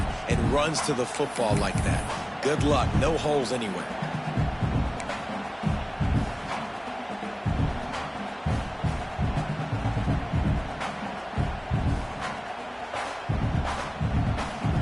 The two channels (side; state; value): both; identical; correlation 1.00